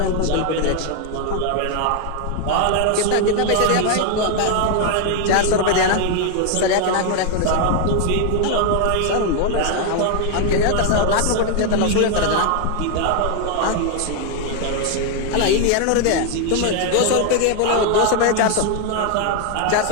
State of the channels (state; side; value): different; both; correlation 0.00